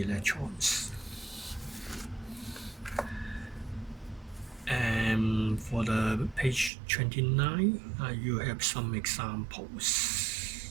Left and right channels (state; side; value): drops out; left; at 6.7 s